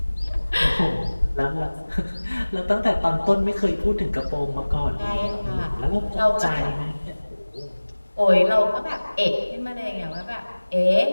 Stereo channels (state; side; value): inverted; both; correlation -1.00